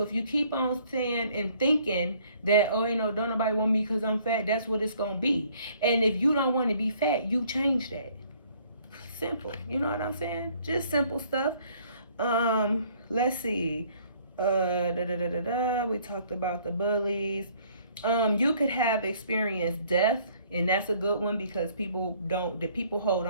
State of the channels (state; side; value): inverted; both; correlation -0.60